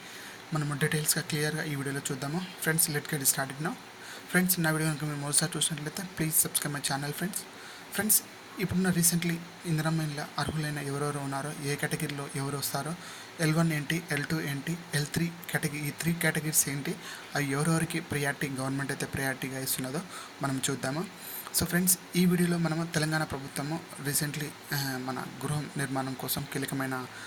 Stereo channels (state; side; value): identical; both; correlation 1.00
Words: మనము డీటెయిల్స్గా క్లియర్గా ఈ వీడియోలో చూద్దాము. Friends, let get started now. Friends, నా వీడియో కనుక మీరు మొదటిసారి చూసినట్లయితే please subscribe my channel. Friends, ఇప్పుడున్న రీసెంట్లీ ఇందిరమ్మ ఇళ్ళ అర్హులైన ఎవరెవరు ఉన్నారో, ఏ కేటగిరీలో ఎవరు వస్తారో, L1 ఏంటి, L2 ఏంటి, L3 కేటగిరీ, ఈ 3 కేటగిరీస్ ఏంటి, అవి ఎవరెవరికి ప్రియారిటీ గవర్నమెంట్ అయితే ప్రియారిటీగా ఇస్తున్నదో మనం చూద్దాము. సో ఫ్రెండ్స్, ఈ వీడియోలో మనము తెలంగాణ ప్రభుత్వము రీసెంట్లీ మన గృహ నిర్మాణం కోసం కీలకమైన